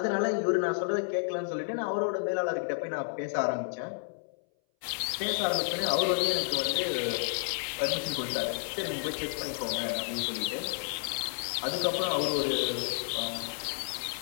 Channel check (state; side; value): silent; right; 57 dB below the other